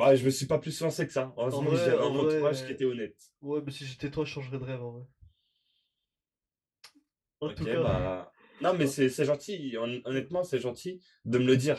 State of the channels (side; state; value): both; identical; correlation 1.00